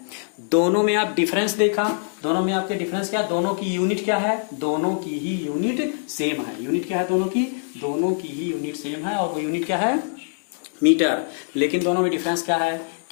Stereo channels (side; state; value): right; silent; digital silence